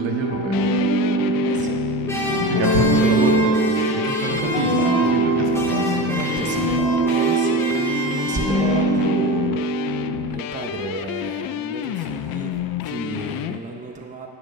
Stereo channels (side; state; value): both; normal; correlation 0.26